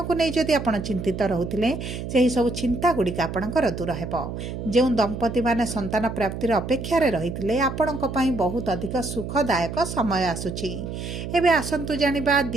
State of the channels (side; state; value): right; noise; hum, 7 dB below the sound